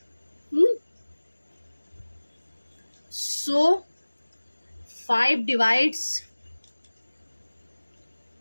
सो 5 divides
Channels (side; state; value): both; inverted; correlation -1.00